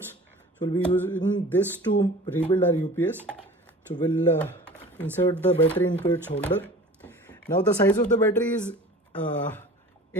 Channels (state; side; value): normal; both; correlation 0.42